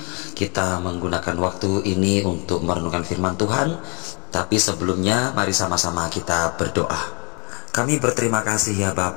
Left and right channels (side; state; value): right; quieter; 33.7 dB